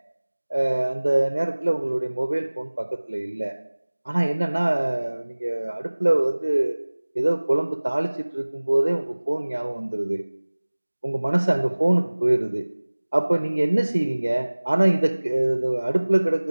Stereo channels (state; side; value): inverted; both; correlation -1.00